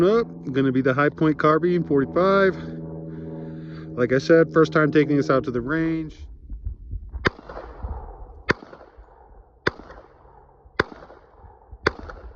up, gonna be the High Point Carbine 45. Like I said, first time taking this out to the range.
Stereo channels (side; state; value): both; identical; correlation 1.00